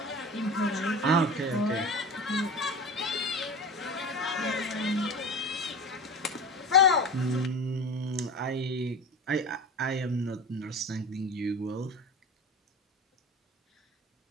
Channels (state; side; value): normal; both; correlation 0.31